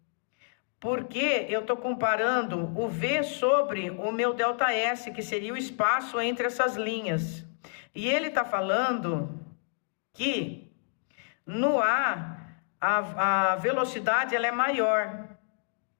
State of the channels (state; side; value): silent; right; digital silence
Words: Porque eu estou comparando o V sobre o meu ΔS, que seria o espaço entre essas linhas. E ele está falando que no A velocidade ela é maior.